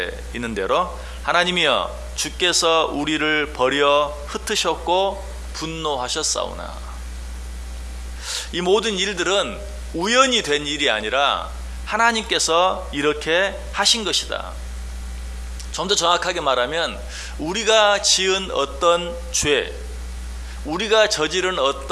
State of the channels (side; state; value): both; identical; correlation 1.00